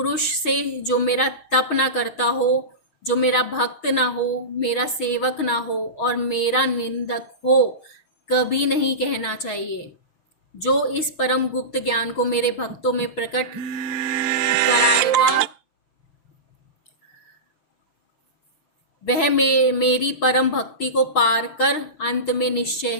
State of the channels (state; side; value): late; right; 6.5 ms